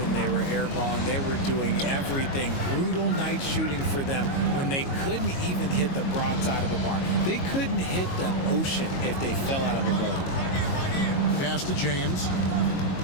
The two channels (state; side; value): late; right; 22 ms